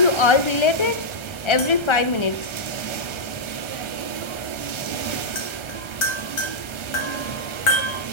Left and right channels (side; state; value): right; late; 1.3 ms